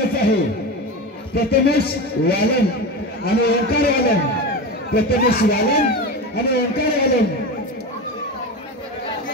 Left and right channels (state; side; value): normal; both; correlation 0.23